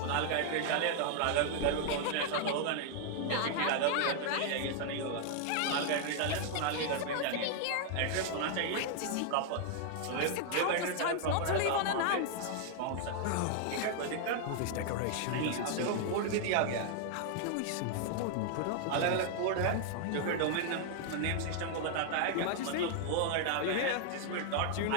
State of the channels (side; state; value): both; different; correlation 0.00